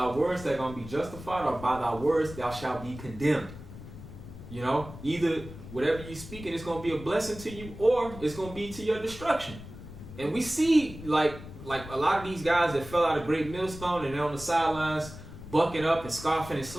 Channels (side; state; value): left; noise; rumble, 14 dB below the sound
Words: words they're going to be justified, or by thy words thou shalt be condemned. You know, either whatever you speak, and it's going to be a blessing to you, or it's going to be to your destruction. And we see, like a lot of these guys that fell out of great millstone and they're on the sidelines bucking up and scoffing and